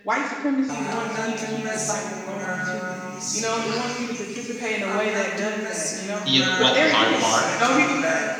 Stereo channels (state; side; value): identical; both; correlation 1.00